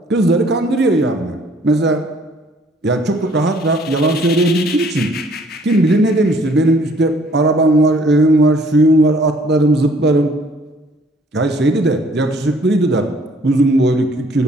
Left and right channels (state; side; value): normal; both; correlation 0.59